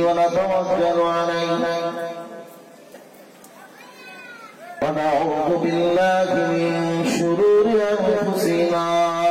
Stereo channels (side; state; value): both; identical; correlation 1.00